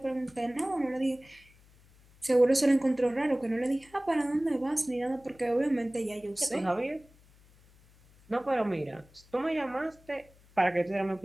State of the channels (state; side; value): noise; left; hum, 28 dB below the sound